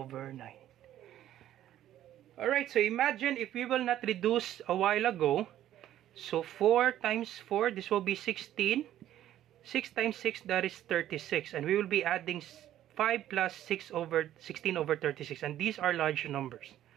9. Alright, so imagine if we will not reduce a while ago. So 4 times 4, this will be 16. 6 times 6, that is 36. And we will be adding 5 plus 6 over 16 over 36. And these are large numbers.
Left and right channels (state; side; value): quieter; left; 12.4 dB